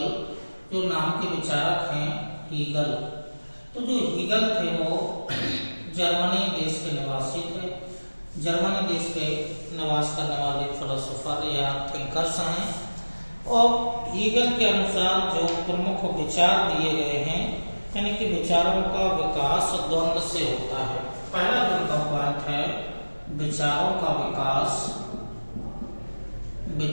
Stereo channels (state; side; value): inverted; both; correlation -1.00